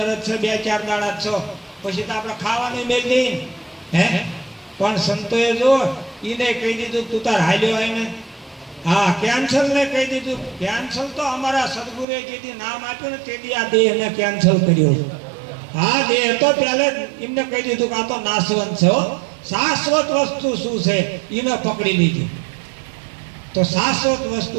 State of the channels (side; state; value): left; drops out; at 12.1 s